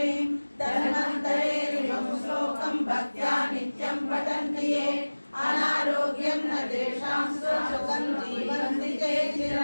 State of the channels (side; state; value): both; inverted; correlation -1.00